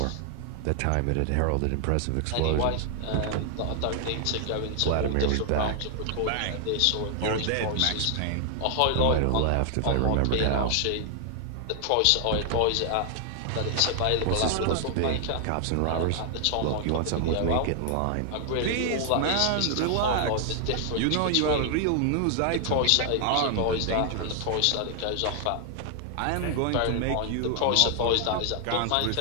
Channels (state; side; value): different; both; correlation 0.00